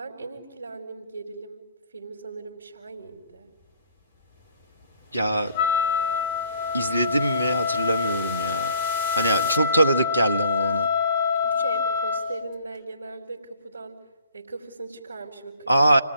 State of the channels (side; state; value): both; inverted; correlation -0.59